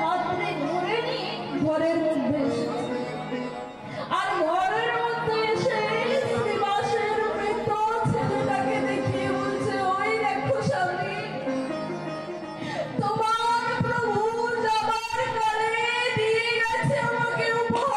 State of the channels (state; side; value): identical; both; correlation 1.00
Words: হাত ধরে ধরে নিয়ে ঘরের মধ্যে এসেছে। আর ঘরের মধ্যে এসে শ্রীবাসের মৃত ছেলেটাকে দেখিয়ে বলছে, ওই দেখো স্বামী, তোমার প্রভু যাবার কালে দিয়ে গেছে আমাকে